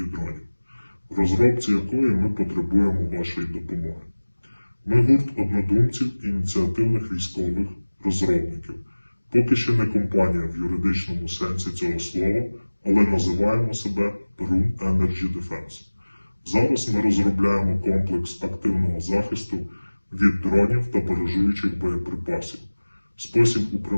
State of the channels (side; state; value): both; inverted; correlation -1.00